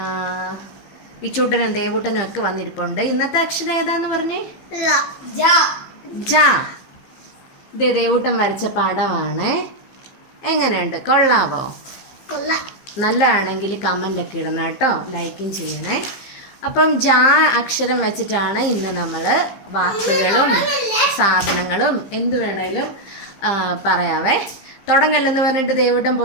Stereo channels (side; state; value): right; late; 15 ms